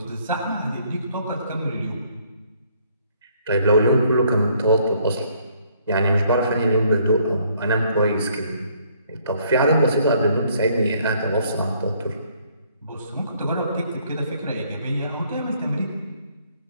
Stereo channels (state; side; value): inverted; both; correlation -0.65